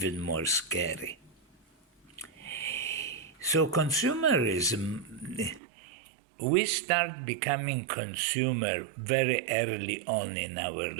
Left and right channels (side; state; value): left; drops out; at 5.6 s